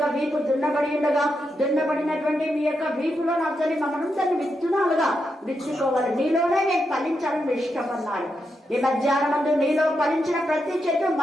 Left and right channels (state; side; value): normal; both; correlation 0.84